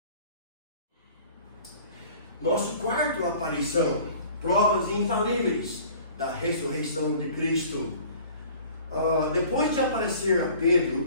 Nosso quarto aparição, provas infalíveis da ressurreição de Cristo. Depois de aparecer a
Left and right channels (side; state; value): both; inverted; correlation -0.48